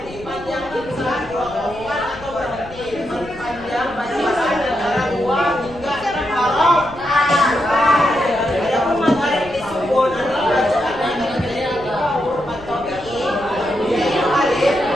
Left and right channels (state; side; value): noise; left; rumble, 18 dB below the sound